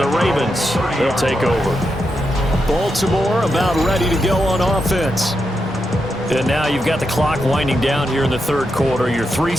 the Ravens, they'll take over. Baltimore about ready to go on offense. And now you've got the clock winding down here in the 3rd quarter. Your 3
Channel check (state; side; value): normal; both; correlation 0.85